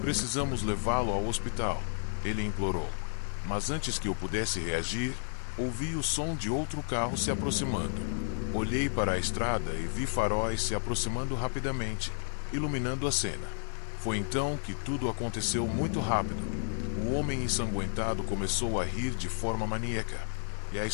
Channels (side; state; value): right; silent; 57 dB below the other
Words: Precisamos levá-lo ao hospital, ele implorou. Mas antes que eu pudesse reagir, ouvi o som de outro carro se aproximando. Olhei para a estrada e vi faróis se aproximando rapidamente, iluminando a cena. Foi então que tudo aconteceu muito rápido. O homem ensanguentado começou a rir de forma maníaca, e a